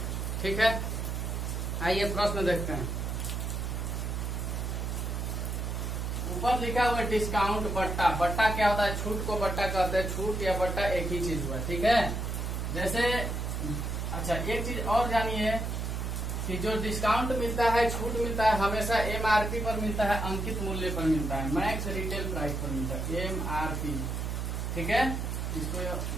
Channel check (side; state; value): right; noise; hum, 2 dB below the sound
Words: ठीक है, आइए प्रश्न देखते हैं। ऊपर लिखा हुआ है डिस्काउंट बट्टा। बट्टा क्या होता है? छूट को बट्टा कहते हैं। छूट या बट्टा एक ही चीज हुआ, ठीक है। जैसे अच्छा, एक चीज और जानिए कि जो डिस्काउंट मिलता है, छूट मिलता है, हमेशा एमआरपी पर मिलता है, अंकित मूल्य पर मिलता है, मैक्स रिटेल प्राइस पर मिलता है, एमआरपी। ठीक है, इसको